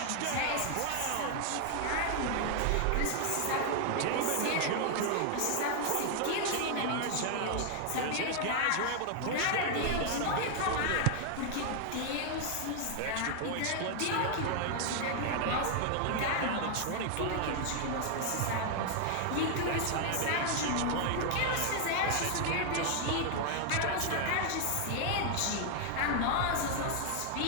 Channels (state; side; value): different; both; correlation 0.00